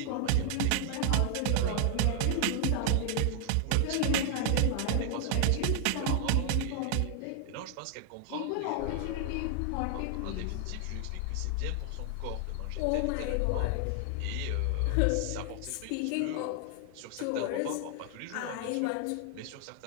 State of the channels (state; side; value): different; both; correlation 0.00